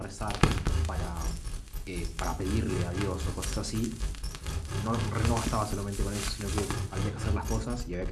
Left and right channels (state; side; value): identical; both; correlation 1.00